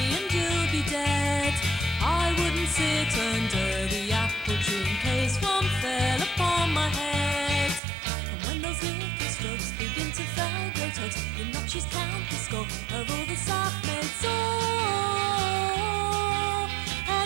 and you'll be dead. I wouldn't sit under the apple tree in case one fell upon my head. And when those little slugs begin to fell great hugs, the notches count the score of all the sap mates. Oh,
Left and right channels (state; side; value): drops out; left; at 7.8 s